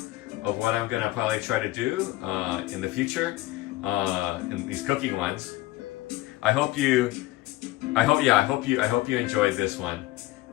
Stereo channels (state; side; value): quieter; right; 18.2 dB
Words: of what I'm gonna probably try to do in the future, in these cooking ones. I hope you enjoyed this one.